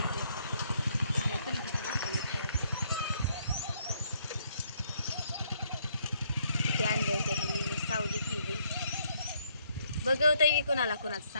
ते आणले होते ह्यांनी सावली केली. बघवतही कोणाला कोणाचं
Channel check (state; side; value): inverted; both; correlation -0.70